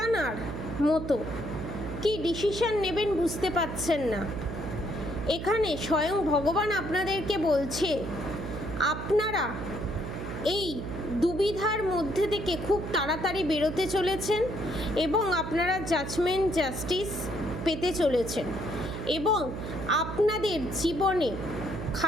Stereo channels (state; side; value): noise; right; hum, 6 dB below the sound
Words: মতো, কি ডিসিশন নেবেন বুঝতে পারছেন না। এখানে স্বয়ং ভগবান আপনাদেরকে বলছে আপনারা এই দুবিধার মধ্যে থেকে খুব তাড়াতাড়ি বেরোতে চলেছেন এবং আপনারা জাস্টিস পেতে চলেছেন এবং আপনাদের জীবনে